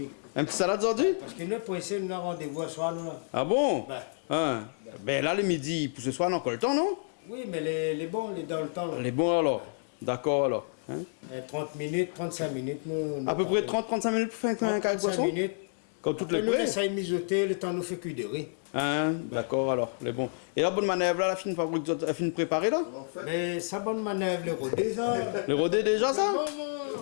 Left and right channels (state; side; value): silent; right; digital silence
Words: Un petit salade aujourd'hui? Parce que nous, pour essayer, nous avons rendez-vous à soir, nous là. Ah bon? Ben. Hein. Ben là, le midi, pour ce soir, on a encore le temps, non? Oui, mais les bons, les dans le temps. Là. Les bons alors. D'accord alors. Hein? 30 minutes, 35 minutes. Nous À peu près 30-35 minutes pour faire un carré de 35 poisson? minutes. Comme toutes Après, les nous prêts? essayons de mijoter, le temps nous fait cuire de riz. Hein? D'accord alors, les bons. Et la bonne manœuvre là, la fine fabrique, la fine préparée là? Mais ça bonne manœuvre, le rodé, ça. Le rodé déjà ça?